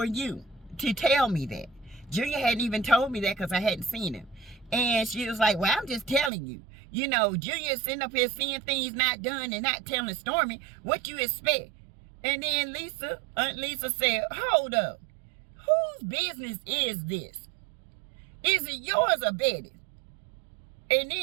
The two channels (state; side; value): drops out; left; at 6.3 s